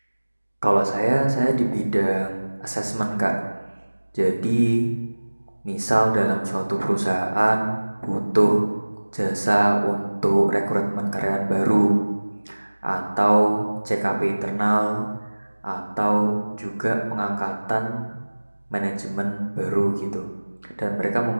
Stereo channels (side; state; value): both; inverted; correlation -1.00